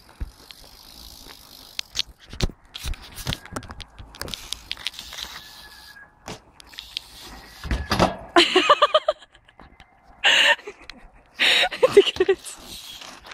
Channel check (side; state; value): both; identical; correlation 1.00